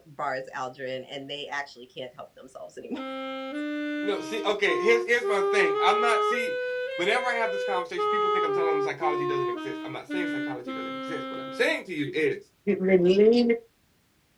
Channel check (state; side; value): identical; both; correlation 1.00